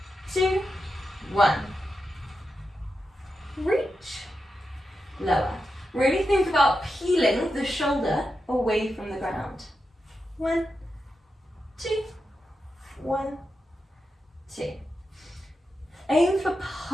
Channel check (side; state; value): both; normal; correlation 0.88